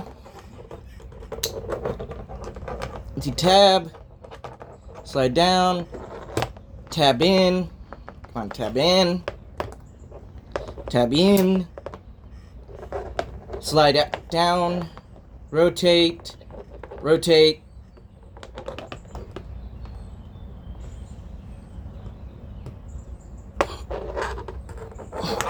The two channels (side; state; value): both; identical; correlation 1.00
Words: Tab, slide down, tab in, come on, tab in, slide down, rotate,